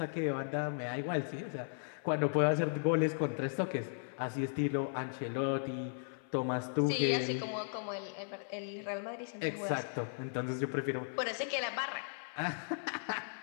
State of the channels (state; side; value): silent; right; 53 dB below the other